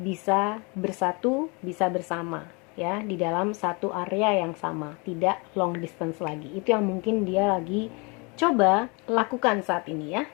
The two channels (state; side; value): quieter; right; 30.5 dB